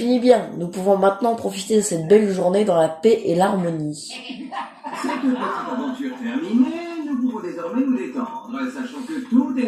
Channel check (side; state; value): both; identical; correlation 1.00